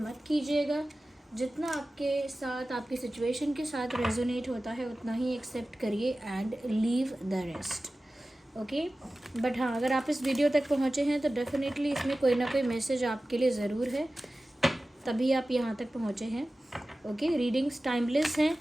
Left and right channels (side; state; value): both; normal; correlation 0.96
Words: मत कीजिएगा। जितना आपके साथ, आपकी सिचुएशन के साथ रेजोनेट होता है उतना ही एक्सेप्ट करिए and leave the rest. Okay, but हाँ, अगर आप इस वीडियो तक पहुँचे हैं तो डेफिनेटली इसमें कोई ना कोई मैसेज आपके लिए ज़रूर है, तभी आप यहाँ तक पहुँचे हैं। ओके, रीडिंग्स टाइमलेस हैं।